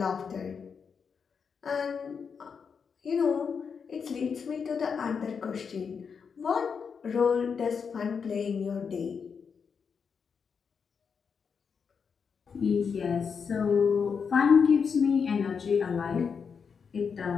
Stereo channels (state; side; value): quieter; right; 6.1 dB